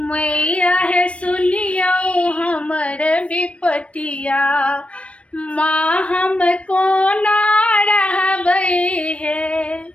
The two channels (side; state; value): right; late; 0.062 ms